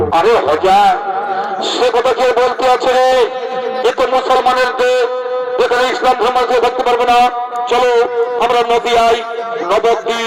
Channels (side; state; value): both; identical; correlation 1.00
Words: আরে হজা, সে কথা কে বলতে আছে রে? এ তো মুসলমানের দেশ, এখানে ইসলাম ধর্ম থাকতে পারবে না। চলো আমরা নদিয়ায়,